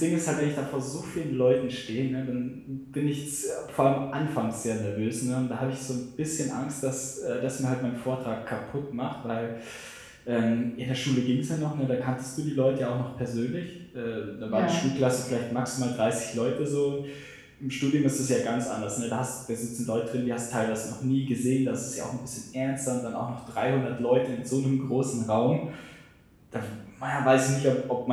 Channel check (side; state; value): both; identical; correlation 1.00